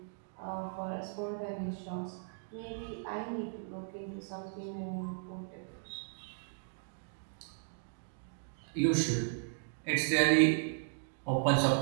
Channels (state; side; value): silent; left; digital silence